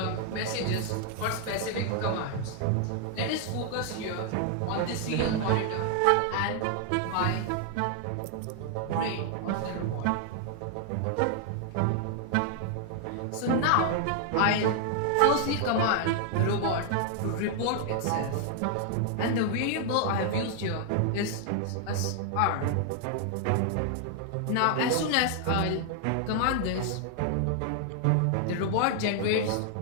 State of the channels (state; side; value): different; both; correlation 0.00